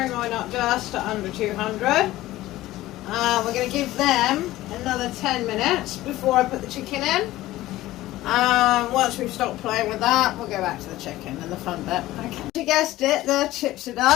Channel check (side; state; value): right; quieter; 16.3 dB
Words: mine up just to under 200. We're going to give them another 10 minutes before I put the chicken in. Once we've stopped playing with that, we'll go back to the chicken and the fun bit. Okay. You guessed it, the chips are